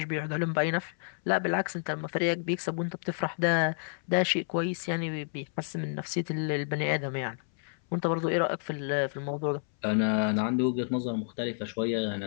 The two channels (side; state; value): right; silent; 58 dB below the other